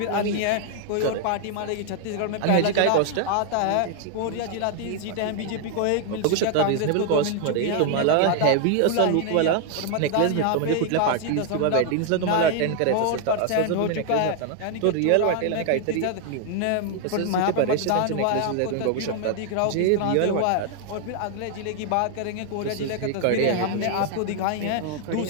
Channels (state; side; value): different; both; correlation 0.00